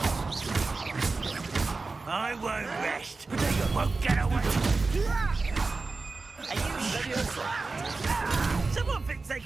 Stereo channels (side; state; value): left; quieter; 3.8 dB